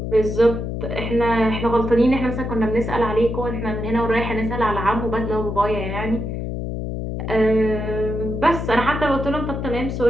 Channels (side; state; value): left; noise; hum, 4 dB below the sound